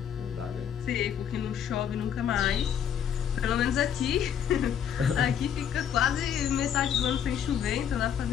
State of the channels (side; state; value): right; quieter; 8.7 dB